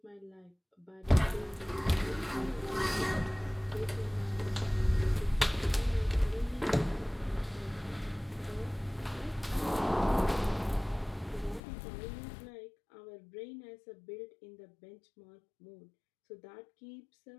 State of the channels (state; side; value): drops out; right; at 11.6 s